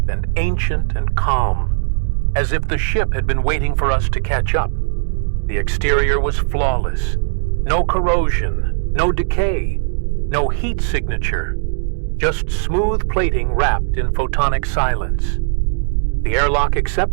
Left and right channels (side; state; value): left; silent; digital silence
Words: and ancient and calm, as if the ship had been waiting for us to catch up. The exterior was flawless. No corrosion, no decay, no heat signature, just smooth plating wrapped in photonic silence. The airlock